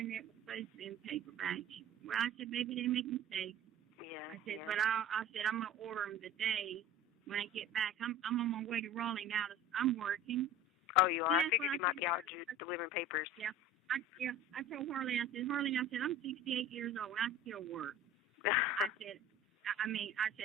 was supposed to be in paperback. Well, I said, maybe they make mistakes. Yeah. I said, but I said, I'm going to order them today when I get back. I'm on my way to Raleigh now. I'm working. Oh, you are? I figured you might be out delivering papers. Yeah. I told Harley, I said, I'm 68 years old, and I still work. I said,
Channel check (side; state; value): both; normal; correlation 0.39